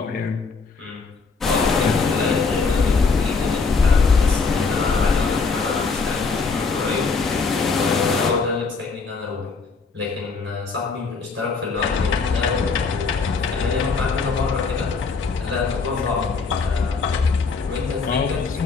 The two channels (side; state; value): right; quieter; 4.6 dB